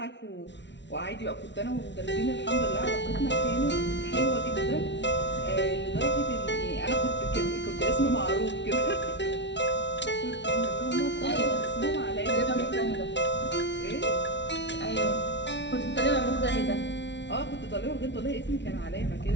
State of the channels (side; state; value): right; late; 0.51 ms